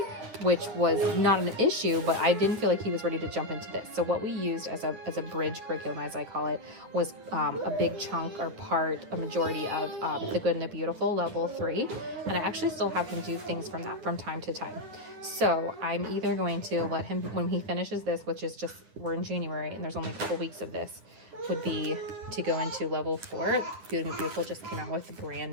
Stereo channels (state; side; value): late; left; 9.5 ms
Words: which was not an issue, but I didn't feel like he was ready to jump into this. So what we used as a bridge curriculum, as I call it, was a big chunk or part, a majority of The Good and the Beautiful, level 3. And I actually still have him do things from that from time to time. So I'm either going to let him, when he finishes this, which is just, we're in January and there's only a couple weeks of this, would be to go into level 4. Good and Beautiful just came out with a brand